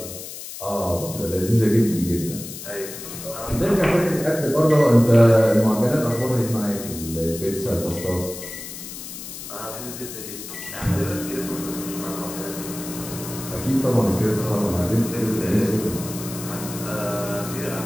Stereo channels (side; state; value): left; noise; hiss, 11 dB below the sound